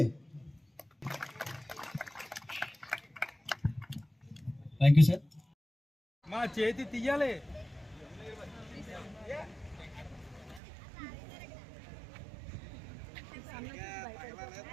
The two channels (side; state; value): left; drops out; at 10.6 s